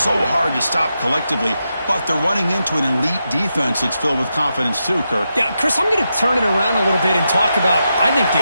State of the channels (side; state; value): both; inverted; correlation -0.86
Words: hard to stop collectively, but they're running into an elite defense that's filled with confidence too, Kirk. Yeah, Chris, I'm going to turn it around a little bit and talk about, I think,